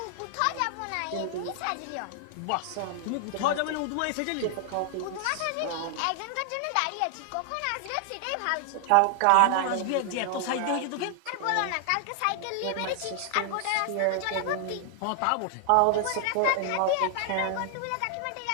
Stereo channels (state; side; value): different; both; correlation 0.00